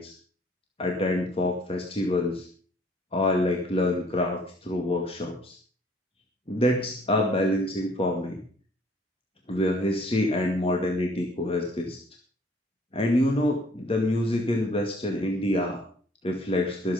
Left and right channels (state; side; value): normal; both; correlation 0.58